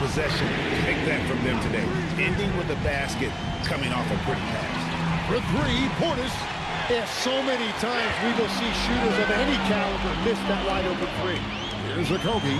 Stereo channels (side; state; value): both; identical; correlation 1.00